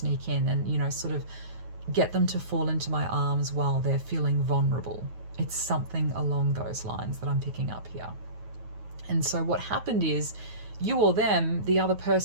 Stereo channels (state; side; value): late; left; 9.3 ms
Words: in and, you know, sort of get them to fall into my arms while they're feeling vulnerable. It's something along those lines that I'm picking up here. And so what happened is, you or them, the other